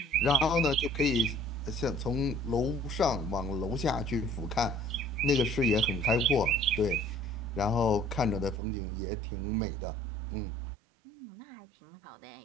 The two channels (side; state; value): left; drops out; at 8.6 s